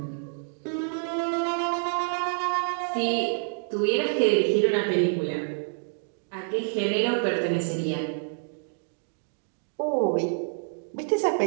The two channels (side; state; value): left; silent; digital silence